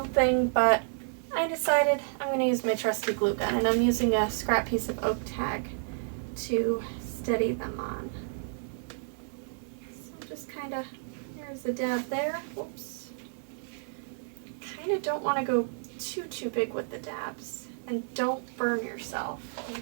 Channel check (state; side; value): silent; left; 57 dB below the other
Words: but I decided I'm going to use my trusty glue gun, and I'm using a scrap piece of oak tag to steady them on. So just kind of, there's a dab there. Whoops. Kind of don't want to go too big with the dabs, and don't burn yourself